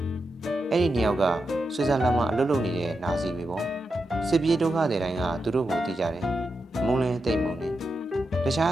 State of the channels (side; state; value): both; normal; correlation 0.87